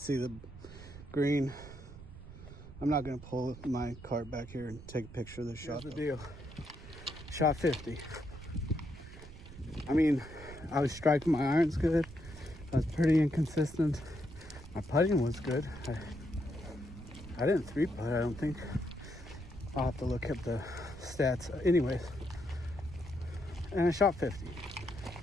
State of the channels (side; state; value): right; noise; rumble, 15 dB below the sound